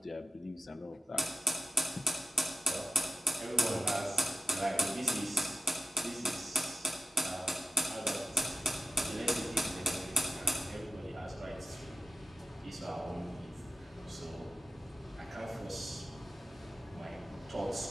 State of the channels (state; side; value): normal; both; correlation 0.94